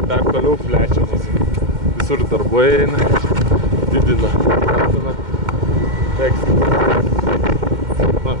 dar toliau plečiamas, visur darbai eina, didina, tekstą. Na,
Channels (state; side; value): late; left; 2.1 ms